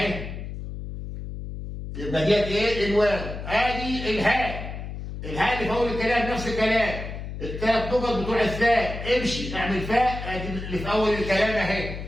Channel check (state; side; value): noise; left; hum, 8 dB below the sound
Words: يبقى ديت ايه؟ الواو. ادي الهاء، الهاء اللي في اول الكلام نفس الكلام الثلاث نقط بتوع الثاء امشي اعمل فاء، ادي اللي في اول الكلام